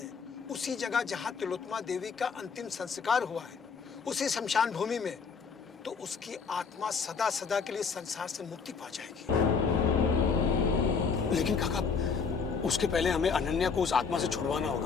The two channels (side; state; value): right; quieter; 5.6 dB